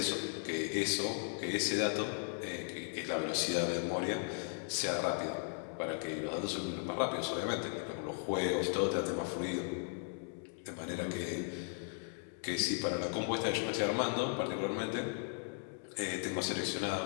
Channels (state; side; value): silent; right; 53 dB below the other